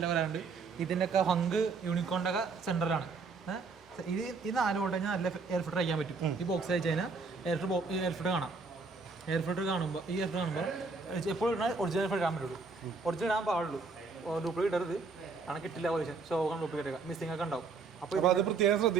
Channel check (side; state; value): left; quieter; 4.4 dB